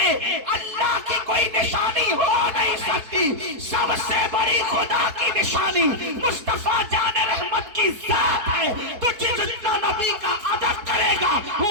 اللہ کی کوئی نشانی ہو نہیں سکتی۔ سب سے بڑی خدا کی نشانی مصطفیٰ جان رحمت کی ذات ہے، تو جتنا نبی کا ادب کرے گا وہ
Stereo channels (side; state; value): left; late; 4.6 ms